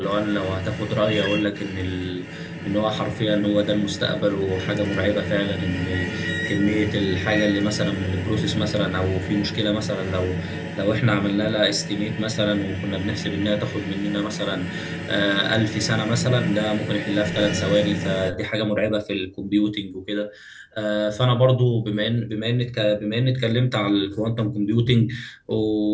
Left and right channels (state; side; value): identical; both; correlation 1.00